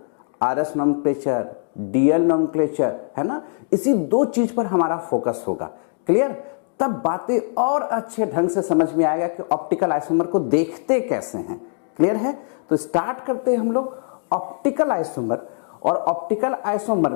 आरएस नोमेनक्लेचर, डीएल नोमेनक्लेचर, है ना। इसी दो चीज पर हमारा फोकस होगा। क्लियर? तब बातें और अच्छे ढंग से समझ में आएगा कि ऑप्टिकल आइसोमर को देखते कैसे हैं। क्लियर है? तो स्टार्ट करते हैं हम लोग ऑप्टिकल आइसोमर। और ऑप्टिकल आइसोमर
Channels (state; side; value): silent; right; digital silence